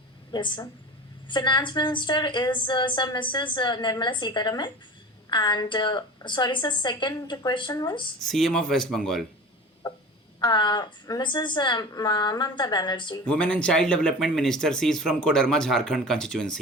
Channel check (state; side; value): normal; both; correlation 0.36